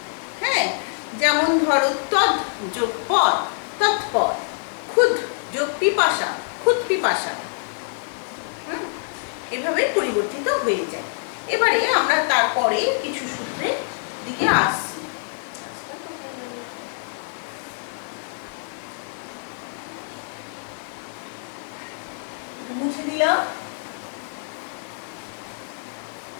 হ্যাঁ, যেমন ধরো তদ যোগ পদ, তৎপদ। ক্ষুদ যোগ পিপাসা, ক্ষুদ পিপাসা। এভাবে পরিবর্তিত হয়ে যায়। এবারে আমরা তারপরে কিছু সূত্রের দিকে আসছি। মুছে দিলাম।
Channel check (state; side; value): silent; right; 62 dB below the other